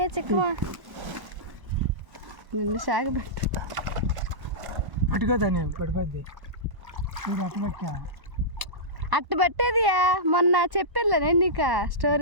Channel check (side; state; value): left; late; 1.1 ms